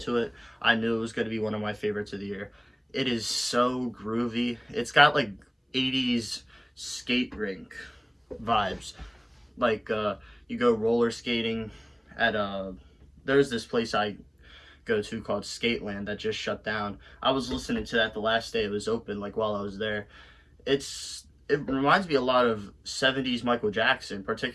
to it, I knew it was going to be one of my favorites of the year. It is so groovy. It's got like 80s skate rink vibes. Like you go roller skating at there's this place I go to called Skateland that just shut down. I was listening to that the last day it was open, like while I was there. It reminds me a lot of 70s Michael Jackson,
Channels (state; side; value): identical; both; correlation 1.00